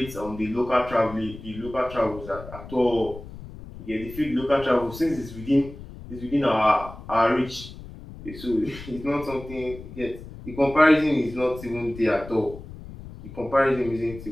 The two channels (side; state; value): left; noise; rumble, 14 dB below the sound